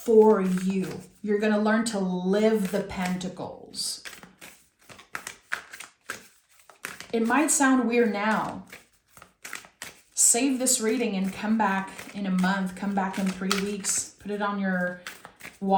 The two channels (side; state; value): both; identical; correlation 1.00